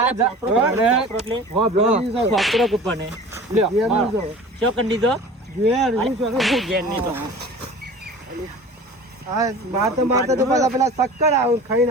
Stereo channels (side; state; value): both; normal; correlation 0.40